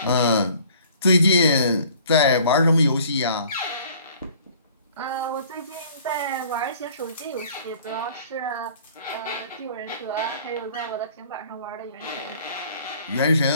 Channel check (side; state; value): both; inverted; correlation -0.53